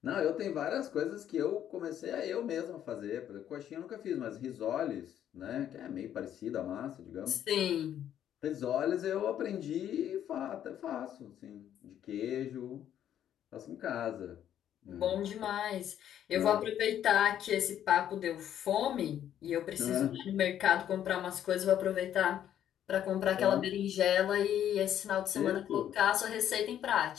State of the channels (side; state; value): right; quieter; 10.5 dB